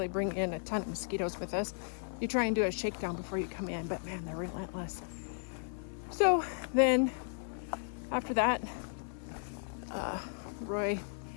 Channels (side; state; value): right; silent; 54 dB below the other